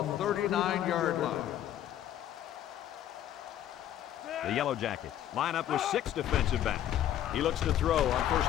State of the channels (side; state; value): right; quieter; 11.5 dB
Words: 39-yard line. The Yellow Jackets line up with 6 defensive backs. He looks to throw on